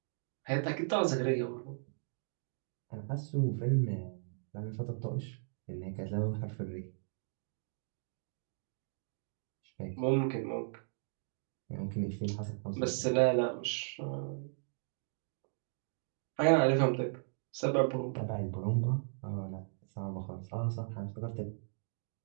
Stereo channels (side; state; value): left; silent; digital silence